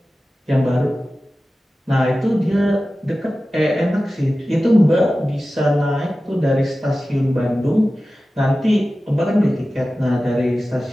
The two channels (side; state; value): both; normal; correlation 0.95